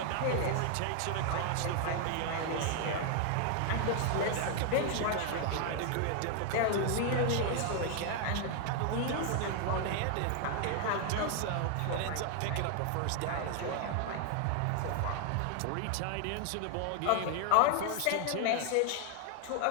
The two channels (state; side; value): different; both; correlation 0.00